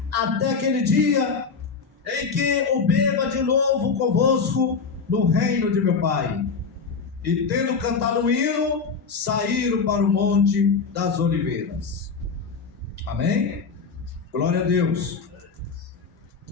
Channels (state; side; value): quieter; right; 5.2 dB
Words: até aquele dia em que o beba de novo convosco no reino de meu Pai. E tendo cantado um hino, saíram para o monte das oliveiras. Amém? Glória a Deus.